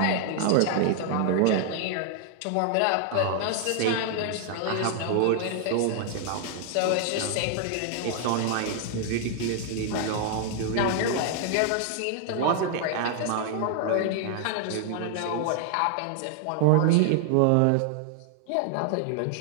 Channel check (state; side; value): different; both; correlation 0.00